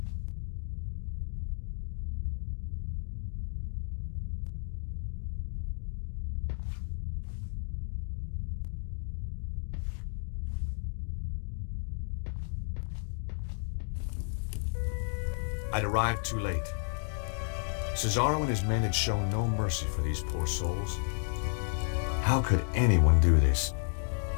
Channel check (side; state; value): right; silent; digital silence